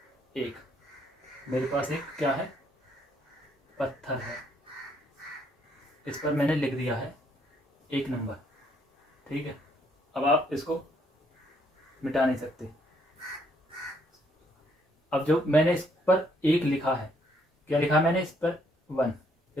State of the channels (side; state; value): both; normal; correlation 0.69